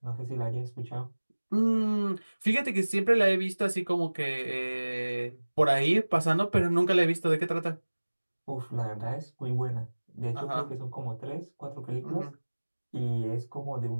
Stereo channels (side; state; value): both; inverted; correlation -1.00